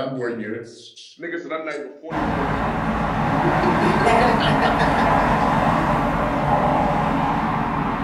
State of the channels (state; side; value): identical; both; correlation 1.00